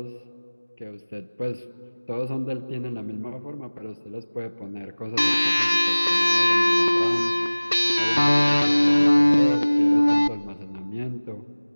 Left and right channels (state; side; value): inverted; both; correlation -1.00